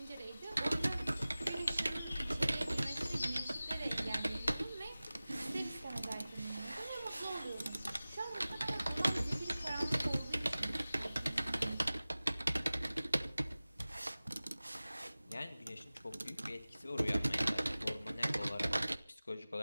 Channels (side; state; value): both; inverted; correlation -0.98